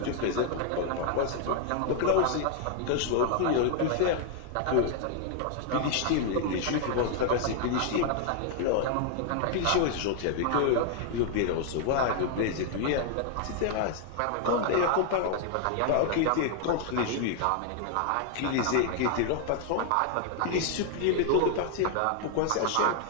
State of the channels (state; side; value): different; both; correlation 0.00